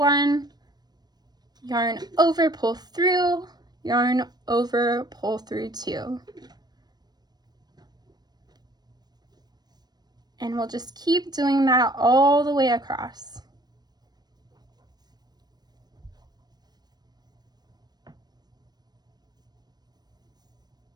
Yarn over, pull through, yarn over, pull through 2. And we'll just keep doing that all the way across.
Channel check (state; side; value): late; left; 0.19 ms